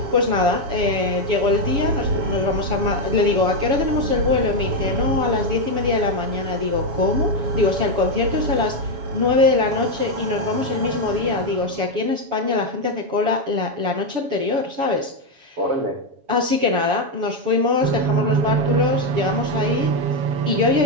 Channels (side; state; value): left; late; 7.2 ms